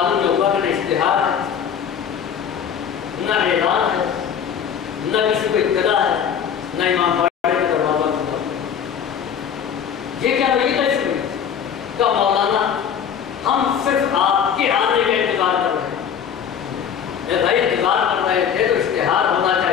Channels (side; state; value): right; quieter; 8.1 dB